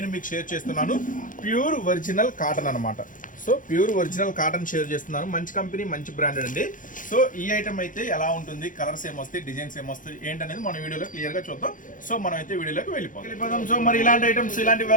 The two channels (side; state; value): right; late; 0.38 ms